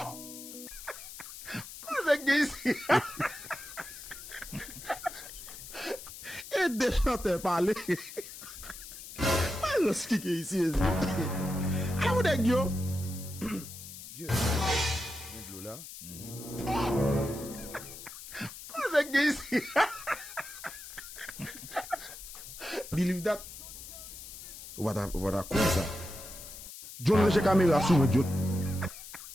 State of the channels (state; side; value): noise; left; hiss, 13 dB below the sound